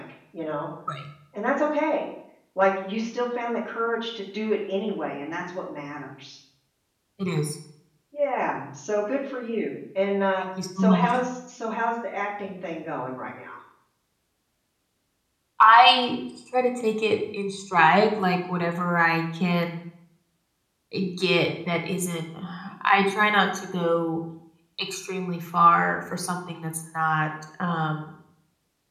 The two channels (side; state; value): both; identical; correlation 1.00